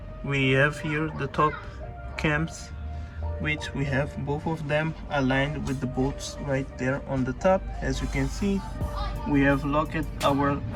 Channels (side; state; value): both; identical; correlation 1.00